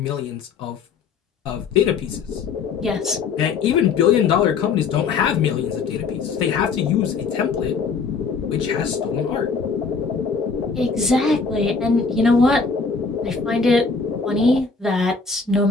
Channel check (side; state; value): right; quieter; 5.0 dB